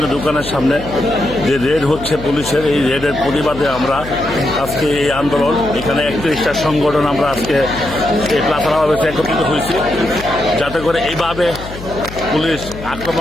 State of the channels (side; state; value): left; noise; hum, 13 dB below the sound